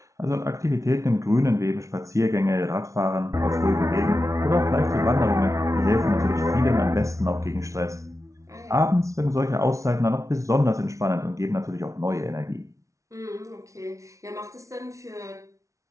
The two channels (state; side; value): late; left; 0.15 ms